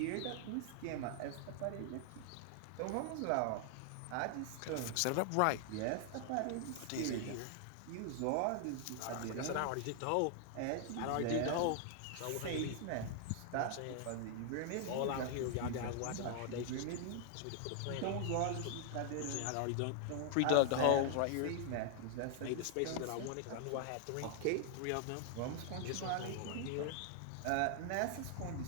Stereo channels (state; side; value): different; both; correlation 0.00